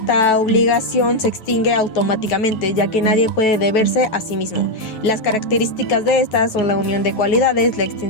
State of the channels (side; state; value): right; late; 9.2 ms